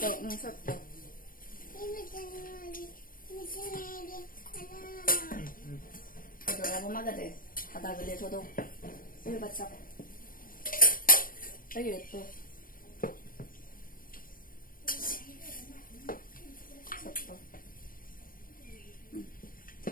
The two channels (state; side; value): late; right; 0.41 ms